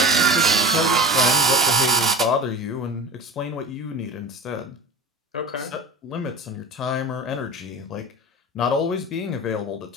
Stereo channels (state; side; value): normal; both; correlation 0.36